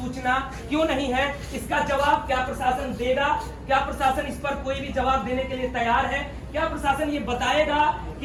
क्यों नहीं है? इसका जवाब क्या प्रशासन देगा? क्या प्रशासन इस पर कोई भी जवाब देने के लिए तैयार है? क्या प्रशासन ये बताएगा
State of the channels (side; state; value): both; identical; correlation 1.00